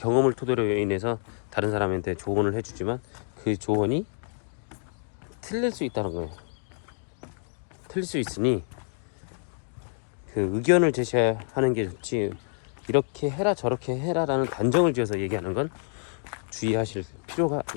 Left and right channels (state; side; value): silent; right; 59 dB below the other